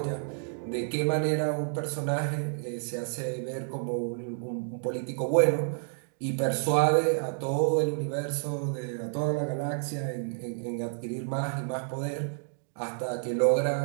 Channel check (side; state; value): left; silent; digital silence